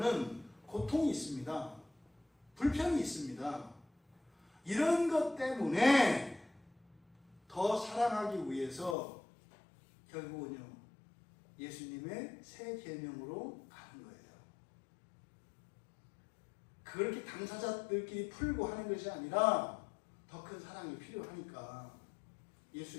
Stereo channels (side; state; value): right; drops out; at 9.0 s